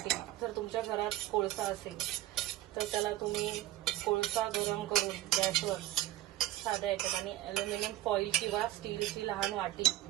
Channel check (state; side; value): quieter; left; 15.0 dB